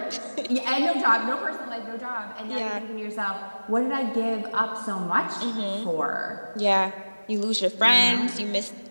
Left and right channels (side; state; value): both; inverted; correlation -1.00